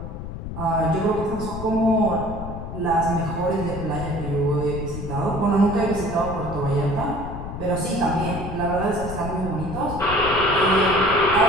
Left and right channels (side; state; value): left; noise; rumble, 8 dB below the sound